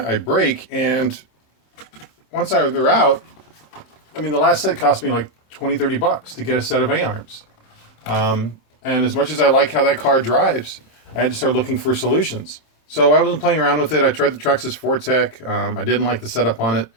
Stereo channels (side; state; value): right; late; 26 ms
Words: I break, and once they're out, I mean, the last set cost me like $20-30 to get a set of A-arms. And as much as I like how that car drives, I had to start looking for solutions. So I wasn't playing around with it. I tried the Traxxas Fortec. I didn't like the setup on it.